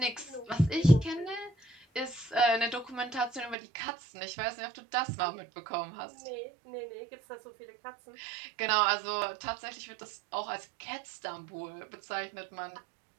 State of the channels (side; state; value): left; drops out; at 3.6 s